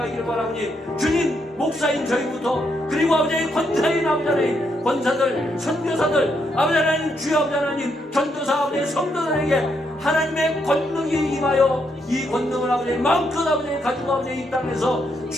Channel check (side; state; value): both; normal; correlation 0.77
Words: 원하오니 주님, 목사인 저희부터 그리고 아버지 권사인 아버지 하나님 권사들, 선교사들 아버지 하나님 주여 아버지 하나님 전도사 아버지 성도들에게 하나님의 권능이 임하여 이 권능을 아버지 마음껏 아버지 가지고 아버지 이 땅에서